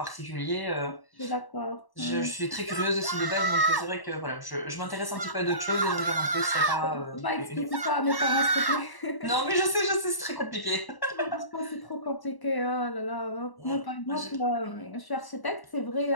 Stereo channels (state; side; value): late; right; 1.0 ms